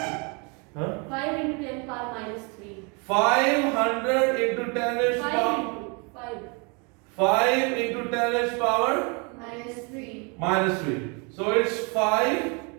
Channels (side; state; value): left; quieter; 32.8 dB